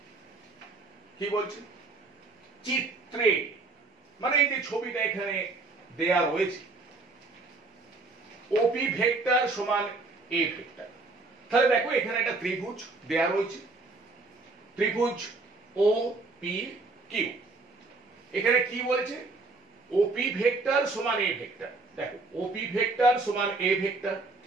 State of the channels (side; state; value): left; quieter; 3.5 dB